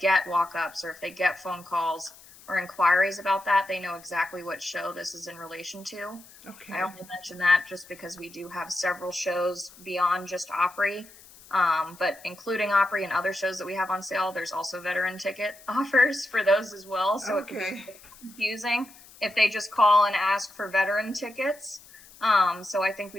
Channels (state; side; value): noise; left; hiss, 22 dB below the sound